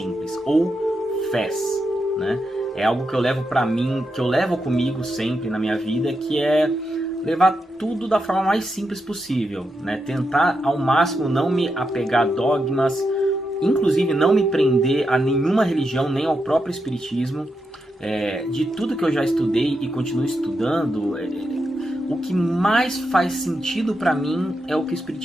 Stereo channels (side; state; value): both; normal; correlation 0.85